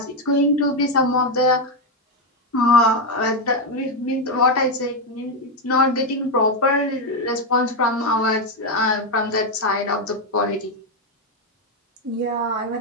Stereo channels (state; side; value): normal; both; correlation 0.06